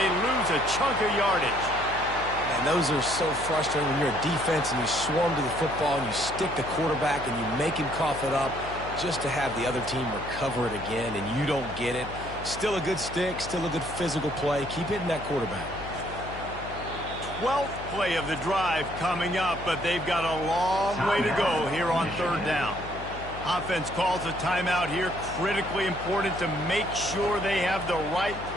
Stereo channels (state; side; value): noise; left; hum, 12 dB below the sound